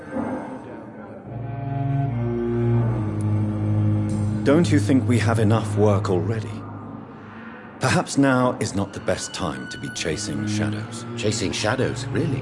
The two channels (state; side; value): identical; both; correlation 1.00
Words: Don't you think we have enough work already? Perhaps now is not the best time to be chasing shadows. Chasing shadows,